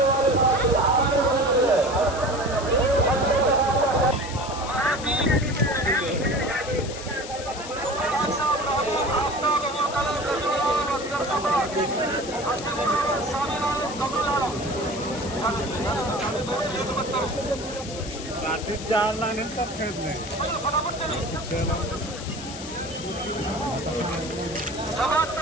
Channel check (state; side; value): noise; left; hiss, 11 dB below the sound